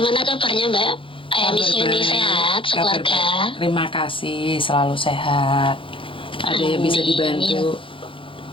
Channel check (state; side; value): late; right; 0.25 ms